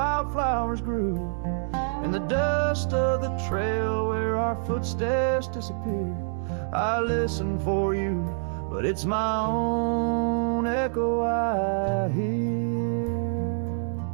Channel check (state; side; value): silent; left; 61 dB below the other